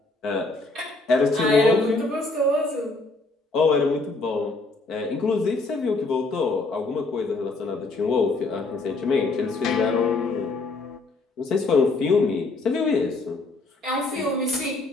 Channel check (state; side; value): quieter; right; 3.3 dB